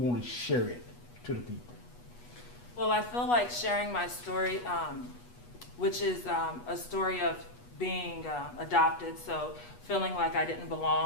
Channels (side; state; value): right; late; 8.2 ms